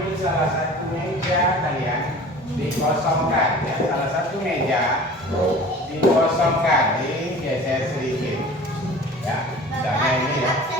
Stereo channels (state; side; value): normal; both; correlation 0.42